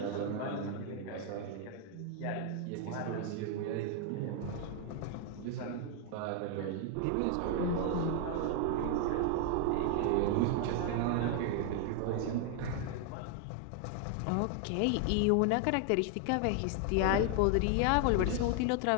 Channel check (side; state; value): both; different; correlation 0.00